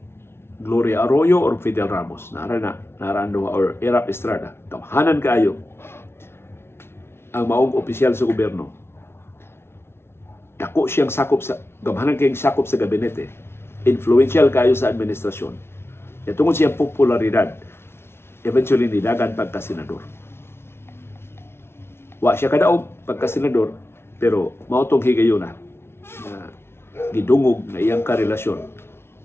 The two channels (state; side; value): late; right; 0.12 ms